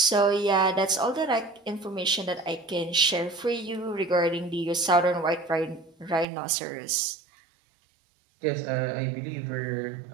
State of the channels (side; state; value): left; drops out; at 6.2 s